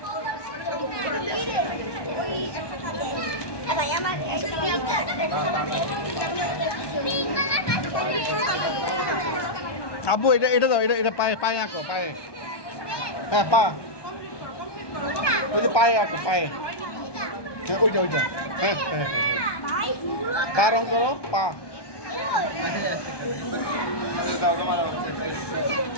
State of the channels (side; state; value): right; late; 1.2 ms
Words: আব্বু এটা দাও, এটা পায়ে আঁকো, পায়ে হ্যাঁ পা, ওই যে পায়ে আঁকো, পায়ে হ্যাঁ ওইটা হ্যাঁ হ্যাঁ পা রং করো,